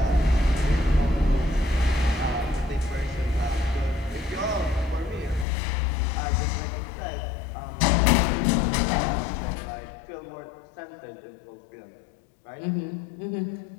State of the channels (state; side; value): drops out; right; at 5.5 s